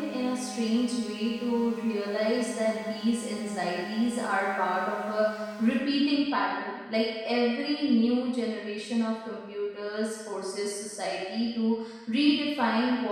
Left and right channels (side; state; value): both; identical; correlation 1.00